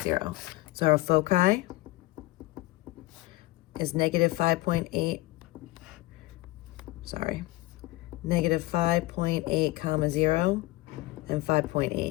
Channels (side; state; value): right; quieter; 19.3 dB